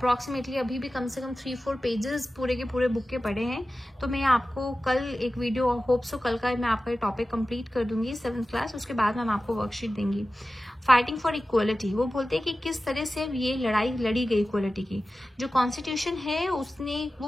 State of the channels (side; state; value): both; normal; correlation 0.95